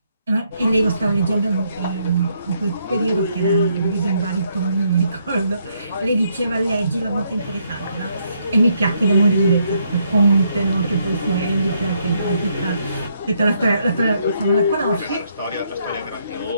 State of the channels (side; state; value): both; inverted; correlation -0.73